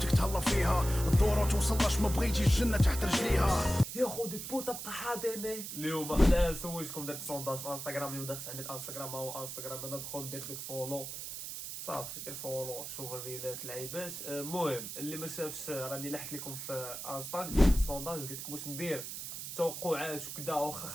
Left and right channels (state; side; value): noise; right; hiss, 8 dB below the sound